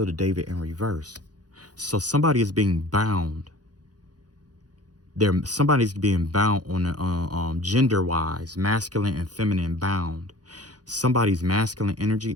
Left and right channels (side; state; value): left; late; 0.69 ms